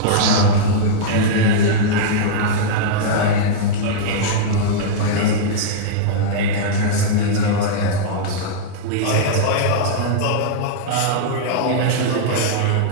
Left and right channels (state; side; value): different; both; correlation -0.02